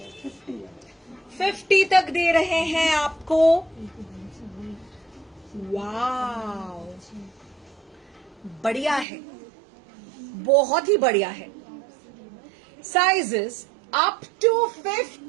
50 तक दे रहे हैं आपको। वाव, बढ़िया है, बहुत ही बढ़िया है। Sizes up to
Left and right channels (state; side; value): drops out; left; at 9.1 s